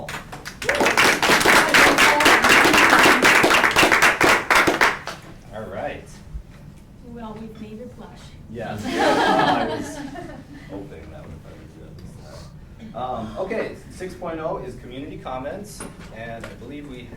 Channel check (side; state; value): both; identical; correlation 1.00